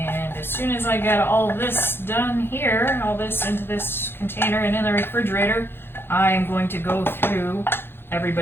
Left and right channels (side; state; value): right; late; 0.11 ms